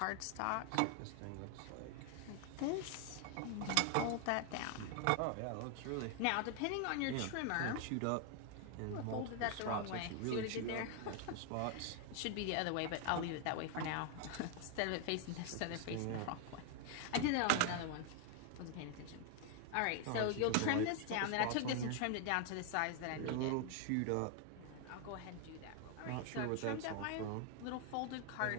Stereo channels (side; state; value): both; different; correlation 0.00